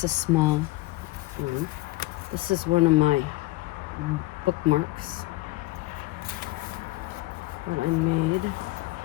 a small one. This is one of my bookmarks that I made.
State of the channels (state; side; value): quieter; right; 20.3 dB